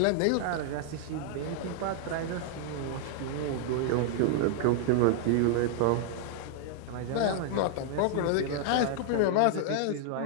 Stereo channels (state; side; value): different; both; correlation 0.00